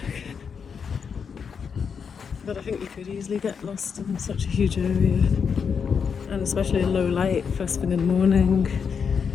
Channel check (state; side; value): quieter; right; 6.4 dB